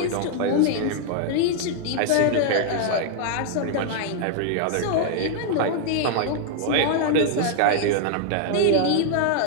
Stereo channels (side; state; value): both; different; correlation 0.00